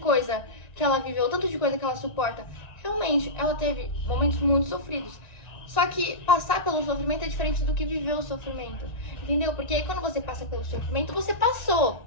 que ela viveu, o tanto de coisa que ela suporta. Realmente, ela teve momentos muito sofridos. Só que passar pelo sofrimento é diferente do que viver o sofrimento. Entendeu? Porque aí quando você passa pelo sofrimento, você passou.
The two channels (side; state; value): right; late; 1.9 ms